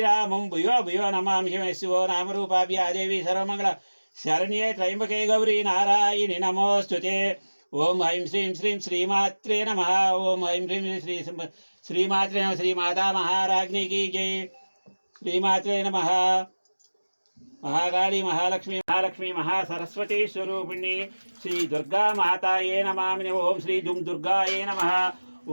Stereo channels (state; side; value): inverted; both; correlation -1.00